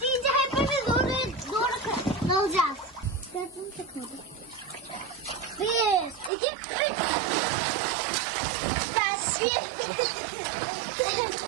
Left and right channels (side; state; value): left; drops out; at 6.3 s